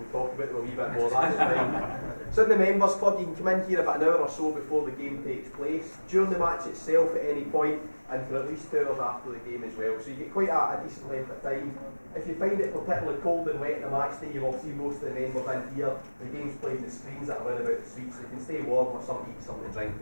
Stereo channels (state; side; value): inverted; both; correlation -1.00